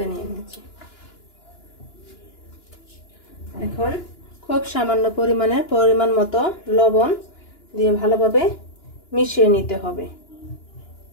নিয়ে নিচ্ছি। এখন খুব সামান্য পরিমাণ মতো লবণ দিয়ে ভালোভাবে মিশিয়ে নিতে হবে।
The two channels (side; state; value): right; late; 2.9 ms